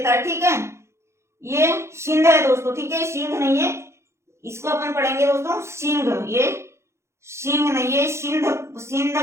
है, ठीक है। ये सिंध है दोस्तों, ठीक है, सिंध नहीं है, इसको अपन पढ़ेंगे दोस्तों सिंह। ये सिंह नहीं है, सिंध, सिंध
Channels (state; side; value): late; left; 0.13 ms